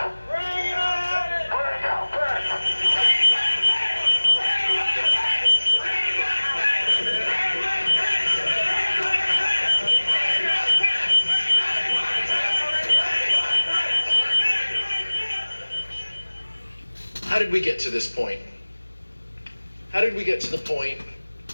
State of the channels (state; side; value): inverted; both; correlation -1.00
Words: How did we get to this point? How did we get to the point